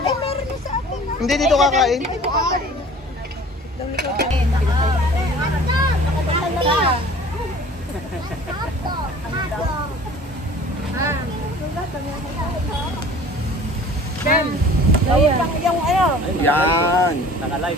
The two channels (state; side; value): normal; both; correlation 0.46